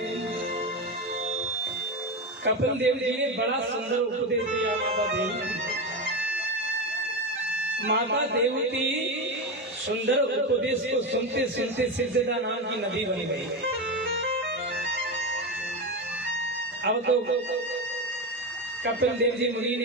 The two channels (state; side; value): normal; both; correlation 0.16